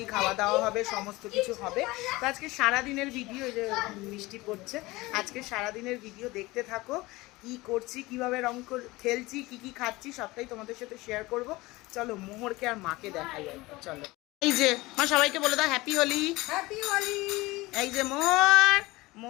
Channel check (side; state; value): right; quieter; 21.0 dB